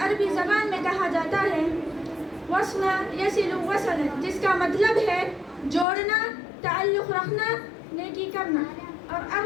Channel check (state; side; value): drops out; right; at 5.9 s